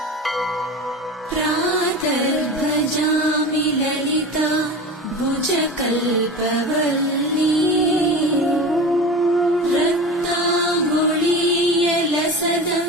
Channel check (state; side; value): normal; both; correlation 0.31